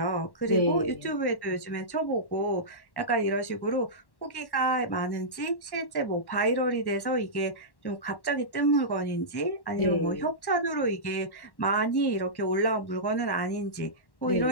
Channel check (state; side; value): late; right; 1.1 ms